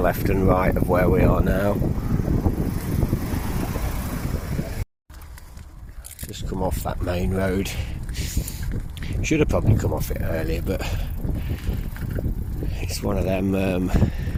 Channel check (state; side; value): identical; both; correlation 1.00